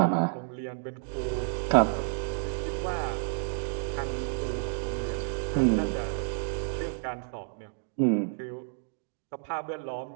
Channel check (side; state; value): left; silent; digital silence